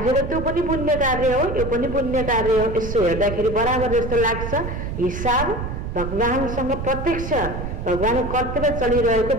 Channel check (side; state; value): right; noise; rumble, 5 dB below the sound